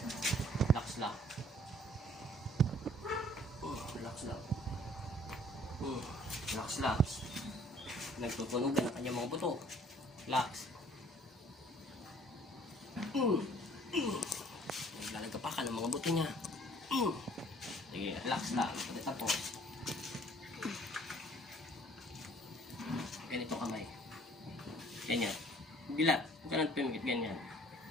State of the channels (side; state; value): both; normal; correlation 0.56